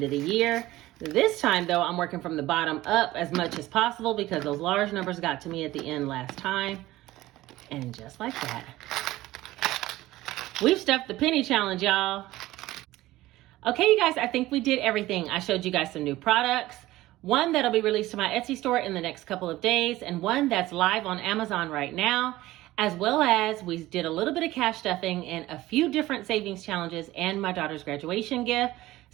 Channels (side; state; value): left; quieter; 16.9 dB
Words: of the year. This time though, I'm working from the bottom up as much as possible because those large numbers got to me at the end last time. And just like that, we've stuffed the penny challenge, y'all. Okay, you guys, I think we did everything. I showed you guys some new products. One that'll be released to my Etsy store in the next couple of days, and one that's live on Amazon right now, as well as we did a little bit of cash stuffing and a few different savings challenges and my daughter's graduation gift.